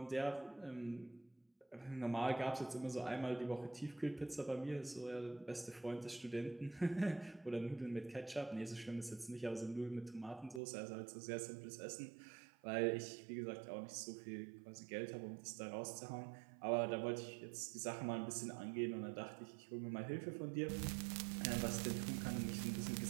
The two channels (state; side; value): drops out; left; at 10.6 s